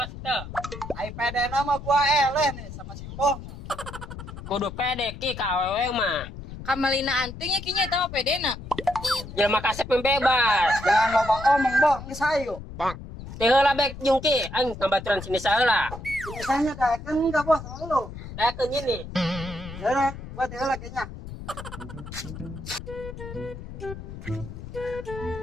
teh. Ai pede nama gua eleh nih sama Simbo. Kudu pede ki ka awewe mah. Kamalina antingnya kinya eta mah pedena. Jangan kasep yang bebas. Jangan loba omong, Boh. Geus hayu. Teh heula bek jungki, aing tambaturan sini saheula. Misalnya daekeun enggak, Bos, sama lu. Dakeun ini. Ya udah, gua teh heula kayaknya.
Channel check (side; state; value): left; noise; rumble, 11 dB below the sound